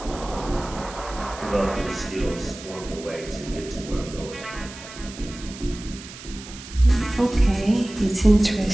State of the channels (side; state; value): right; noise; hiss, 15 dB below the sound